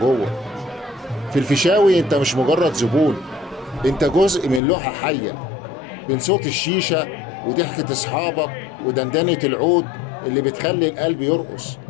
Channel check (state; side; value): drops out; right; at 4.6 s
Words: جوه. في الفيشاوي انت مش مجرد زبون، انت جزء من لوحة حية، بين صوت الشيشة وضحكة اصحابك ودندنة العود اللي بتخلي القلب يرقص.